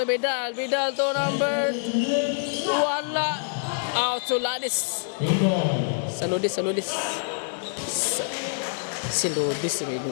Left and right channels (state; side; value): silent; right; digital silence